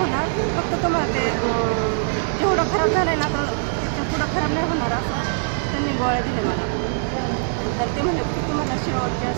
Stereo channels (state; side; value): silent; left; digital silence